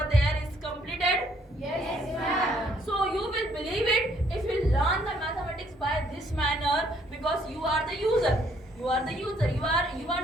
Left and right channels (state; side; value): normal; both; correlation 0.66